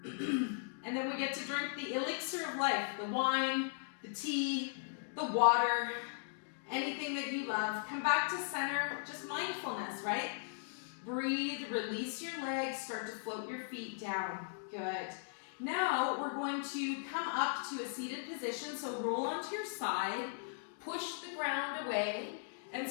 And then we get to drink the elixir of life, the wine, the tea, the water, anything that you love. Come back to center, just mindfulness, right? Breathe, release your legs, start to float your feet down. Good. Now we're going to come up to a seated position, so roll onto your side, push the ground away, and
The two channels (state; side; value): silent; right; digital silence